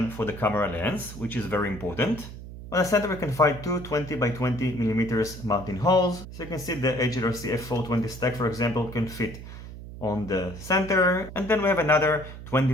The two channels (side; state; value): right; noise; hum, 13 dB below the sound